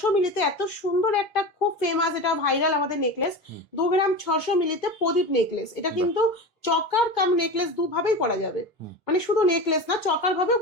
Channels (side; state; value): both; normal; correlation 0.27